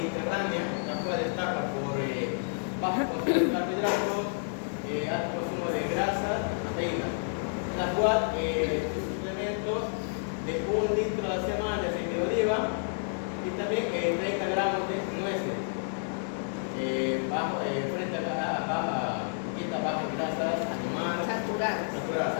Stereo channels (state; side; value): silent; right; digital silence